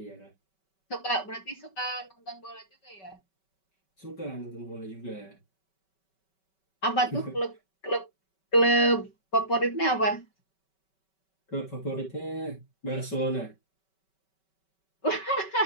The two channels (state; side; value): late; right; 5.2 ms